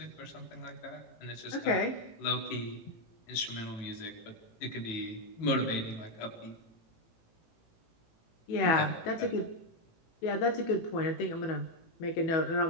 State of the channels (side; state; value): right; late; 19 ms